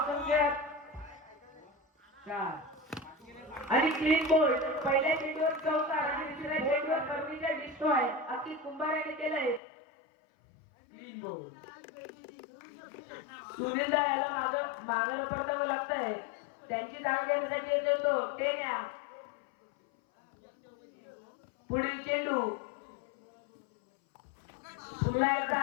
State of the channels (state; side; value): drops out; right; at 9.6 s